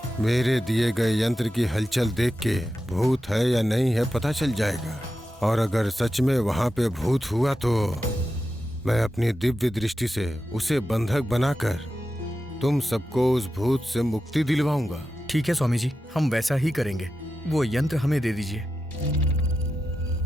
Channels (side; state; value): both; normal; correlation 0.90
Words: मेरे दिए गए यंत्र की हलचल देख के भूत है या नहीं है पता चल जाएगा। और अगर सच में वहां पे भूत हुआ तो मैं अपनी दिव्य दृष्टि से उसे बंधक बनाकर तुम सबको उस भूत से मुक्ति दिलवाऊंगा। ठीक है स्वामी जी, हम वैसा ही करेंगे। वो यंत्र हमें दे दीजिए।